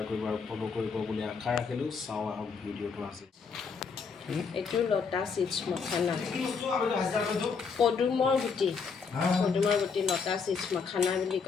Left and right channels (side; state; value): right; quieter; 5.5 dB